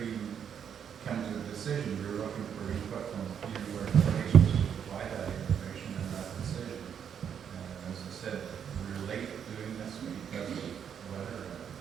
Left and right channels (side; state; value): left; quieter; 8.1 dB